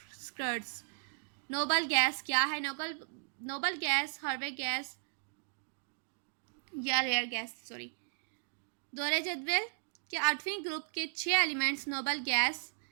स्कर्ट्स। नोबल गैस क्या है? नोबल गैस हार्वे गैस या रेयर गैस दोहरे जदवल के 8वें ग्रुप के 6 एलिमेंट्स नोबल गैस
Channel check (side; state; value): left; silent; digital silence